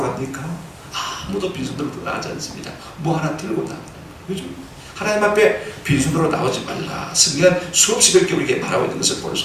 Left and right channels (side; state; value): both; identical; correlation 1.00